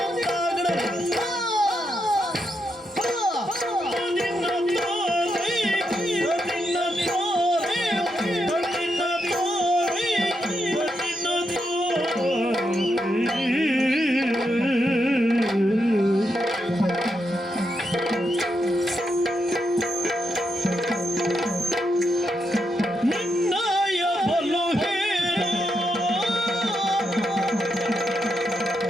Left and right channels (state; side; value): normal; both; correlation 0.82